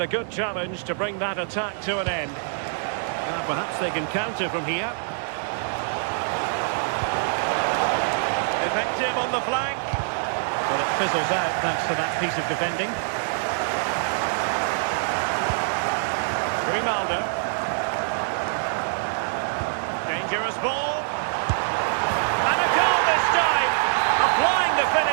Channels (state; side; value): silent; left; digital silence